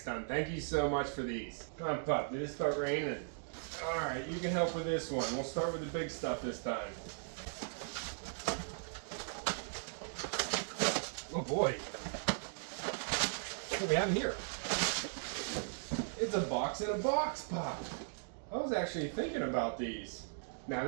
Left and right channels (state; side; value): silent; left; digital silence